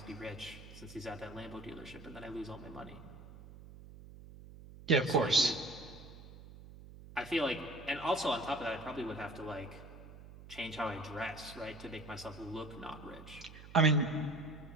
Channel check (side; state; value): right; noise; hum, 16 dB below the sound